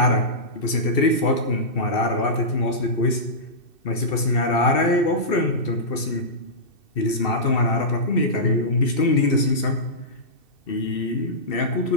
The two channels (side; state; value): right; late; 2.7 ms